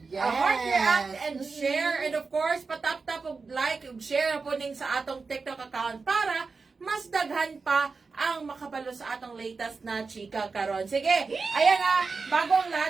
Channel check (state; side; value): quieter; left; 4.4 dB